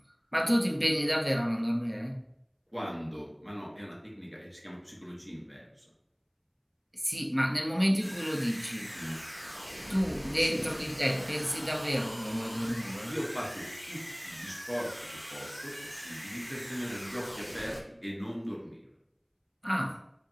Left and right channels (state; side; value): identical; both; correlation 1.00